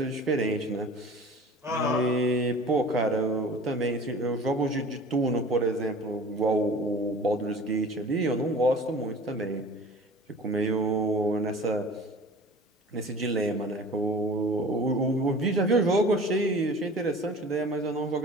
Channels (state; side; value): normal; both; correlation 0.42